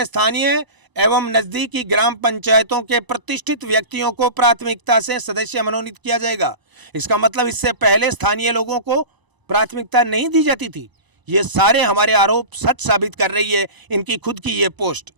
स्थानीय एवं नजदीकी ग्राम पंचायतों के प्रतिष्ठित व्यक्तियों को प्राथमिकता से सदस्य मनोनीत किया जाएगा। इसका मतलब इससे पहले स्थानीय लोगों को प्राथमिकता नहीं दी जाती थी। ये सारे हमारे आरोप सच साबित कर रही है इनकी खुद की ये पोस्ट।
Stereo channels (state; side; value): late; left; 1.0 ms